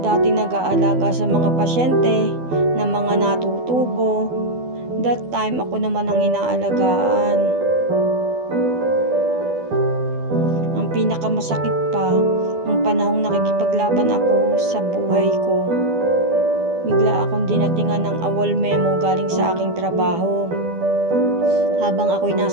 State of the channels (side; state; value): left; late; 12 ms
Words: nag-aalaga sa mga pasyente na mga natutubo, that time ako naman ang inaalagaan. Ang pinakamasakit pa, ang panahong nakikipaglaban ako sa buhay ko. Bigla akong dinatingan ng awol memo galing sa aking trabaho habang ako'y